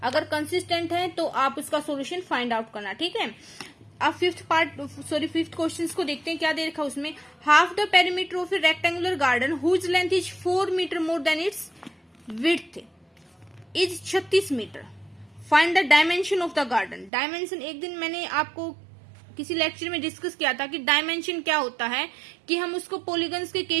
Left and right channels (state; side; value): drops out; left; at 17.1 s